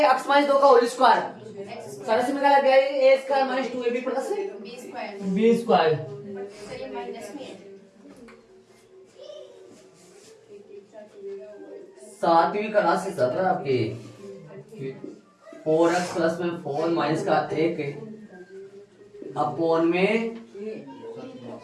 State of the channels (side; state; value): both; identical; correlation 1.00